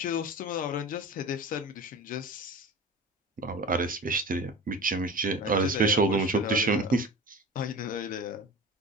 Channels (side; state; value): both; normal; correlation 0.33